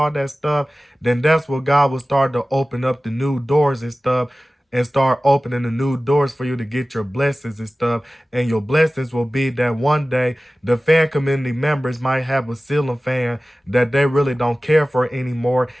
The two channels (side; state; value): both; normal; correlation 0.97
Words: that stuff, then that's what God will start to open up the new doors and stuff, and start opening the new doors for you to get your blessings and stuff. And your blessings will be that one day the fan community members might have a ceiling fan that they really don't care for anymore.